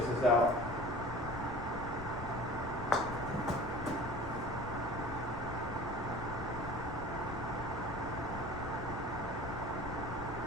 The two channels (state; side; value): noise; left; rumble, 7 dB below the sound